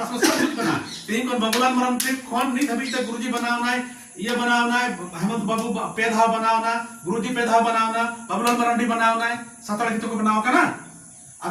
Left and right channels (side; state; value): both; identical; correlation 1.00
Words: में सब कुछ बना तीन कौन बबुलाल मरम से कौन नहीं अभी तक गुरुजी बनावना है ये बनावना है हेमंत बाबू पेधाव बनावना गुरुजी पेधाव बनावना बबुलाल मरंडी बनावना है सतड़ गीतों को बनाओ का ना